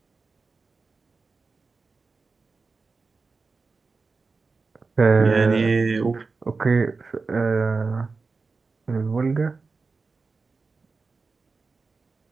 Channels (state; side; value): quieter; left; 4.2 dB